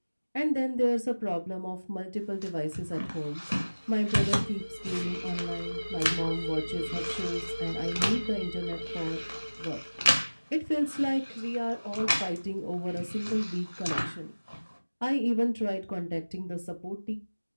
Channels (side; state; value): both; inverted; correlation -1.00